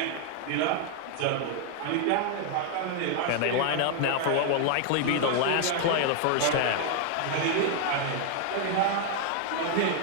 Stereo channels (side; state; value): both; different; correlation 0.00